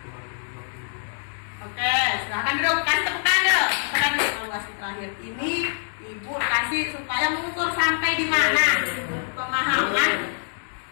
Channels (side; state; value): right; silent; digital silence